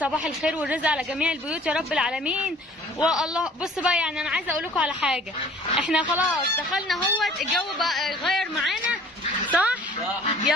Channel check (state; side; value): normal; both; correlation 0.51